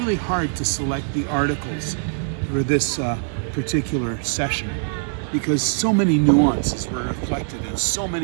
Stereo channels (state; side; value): silent; left; 64 dB below the other